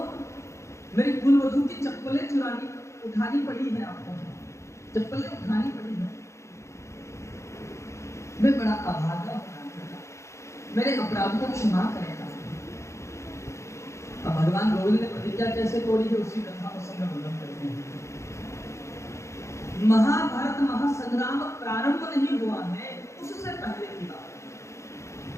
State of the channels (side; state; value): right; late; 0.14 ms